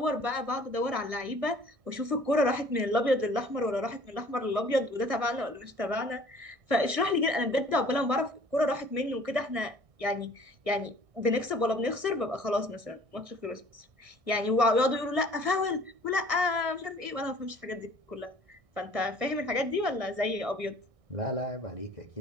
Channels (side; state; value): left; late; 1.6 ms